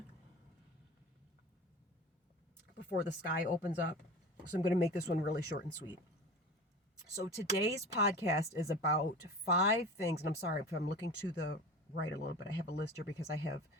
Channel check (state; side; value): normal; both; correlation 0.34